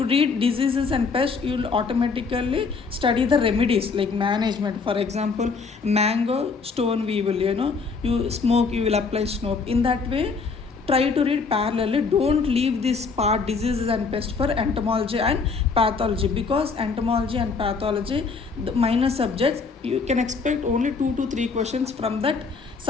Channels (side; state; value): right; quieter; 4.7 dB